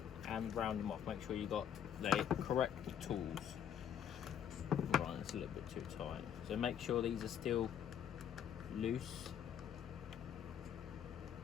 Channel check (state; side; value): quieter; right; 8.9 dB